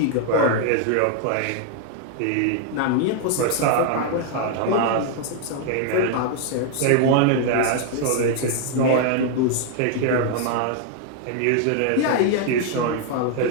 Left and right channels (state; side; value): different; both; correlation 0.00